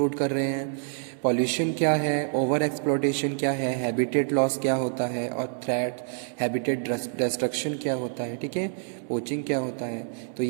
कर रहे हैं, पॉल्यूशन क्या है, ओवर एक्सप्लोटेशन क्या है, हैबिटेट लॉस क्या होता है, और थ्रेट हैबिटेट डिस्ट्रक्शन क्या होता है, ठीक है, पोचिंग क्या होता है। तो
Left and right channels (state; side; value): silent; left; 59 dB below the other